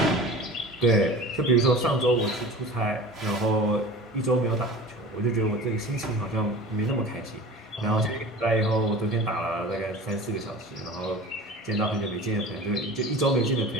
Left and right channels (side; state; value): both; normal; correlation 0.38